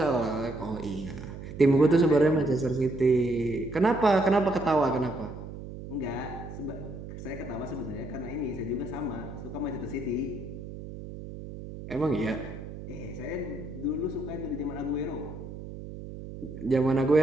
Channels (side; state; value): right; noise; hum, 11 dB below the sound